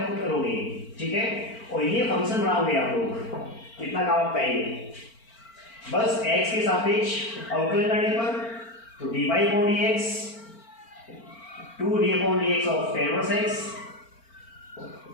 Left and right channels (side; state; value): right; late; 4.4 ms